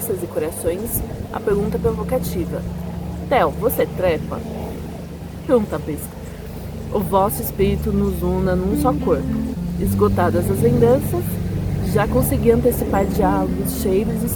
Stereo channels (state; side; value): identical; both; correlation 1.00